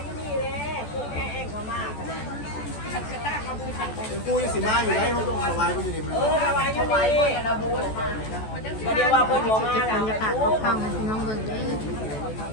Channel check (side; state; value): right; late; 14 ms